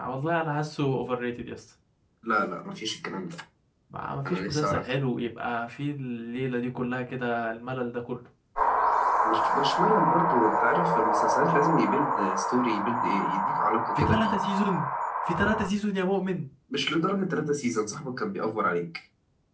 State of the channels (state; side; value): identical; both; correlation 1.00